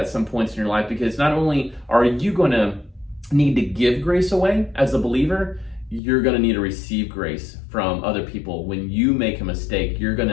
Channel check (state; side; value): drops out; right; at 6.0 s